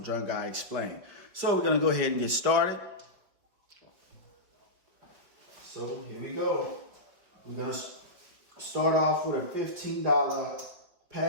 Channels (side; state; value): left; late; 5.0 ms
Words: Drunk Guy Explain. So we're gonna go ahead and get started. So here we go. We're gonna start off with a $15